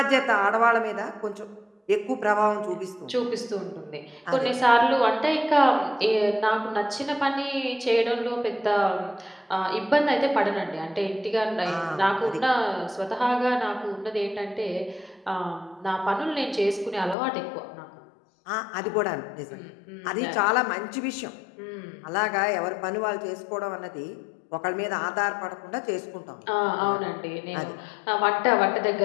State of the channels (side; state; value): right; drops out; at 17.2 s